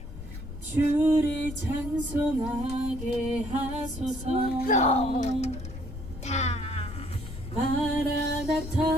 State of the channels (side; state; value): left; noise; rumble, 11 dB below the sound